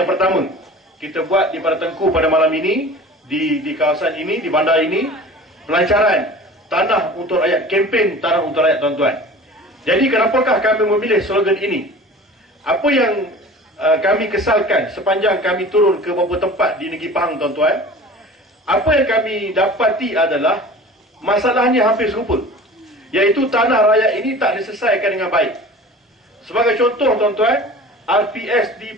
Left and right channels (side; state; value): both; normal; correlation 0.41